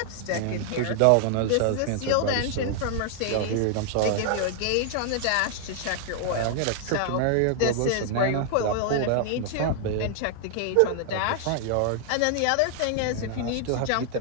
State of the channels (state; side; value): different; both; correlation 0.00